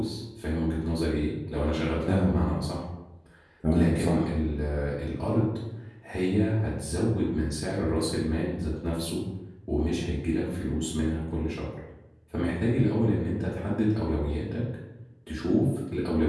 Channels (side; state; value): both; identical; correlation 1.00